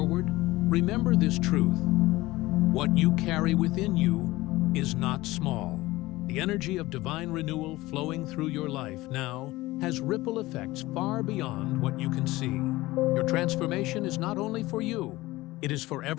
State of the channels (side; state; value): right; quieter; 19.0 dB